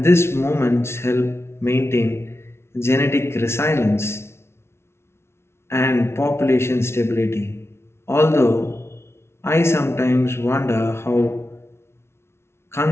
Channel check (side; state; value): right; late; 0.12 ms